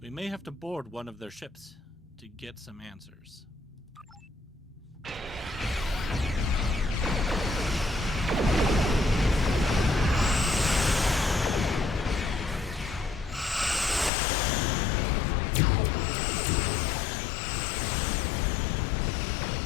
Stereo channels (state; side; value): drops out; right; at 14.1 s